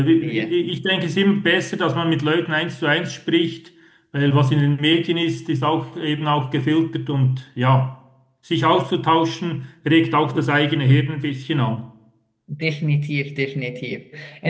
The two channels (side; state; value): both; identical; correlation 1.00